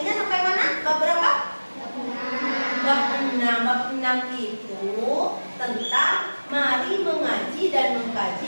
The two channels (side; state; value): both; inverted; correlation -1.00